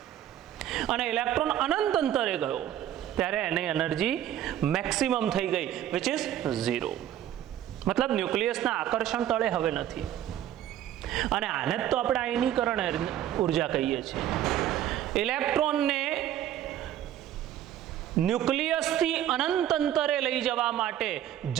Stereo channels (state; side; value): quieter; left; 11.7 dB